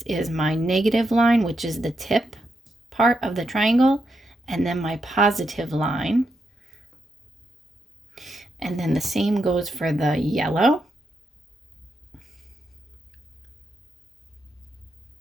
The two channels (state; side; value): normal; both; correlation 0.83